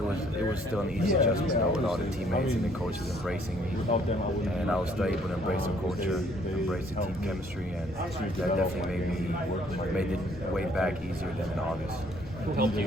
was still an easy adjustment though, with all the teammates and the coaches embracing me, and I was still able to embrace the culture, embrace the team chemistry, and that definitely made it way back easier than in August. Who helped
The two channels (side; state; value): left; noise; rumble, 16 dB below the sound